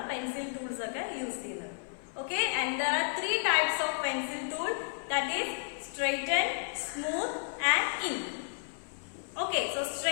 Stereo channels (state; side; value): silent; right; 55 dB below the other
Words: pencil tools ഒക്കെ യൂസ് ചെയ്യുന്നത്. Okay, and there are 3 types of pencil tool, that is straighten, smooth and ink. Okay, so